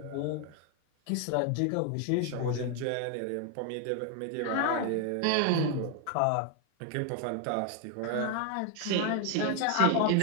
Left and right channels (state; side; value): different; both; correlation 0.01